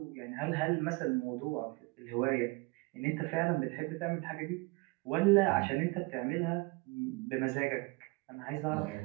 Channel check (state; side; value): quieter; left; 26.7 dB